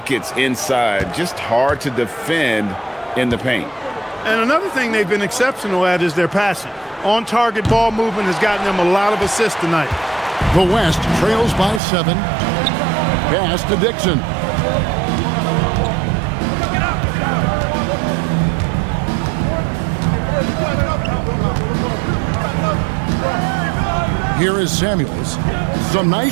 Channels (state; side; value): drops out; left; at 11.8 s